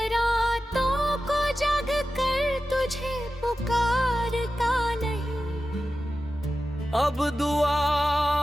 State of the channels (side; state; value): both; normal; correlation 0.93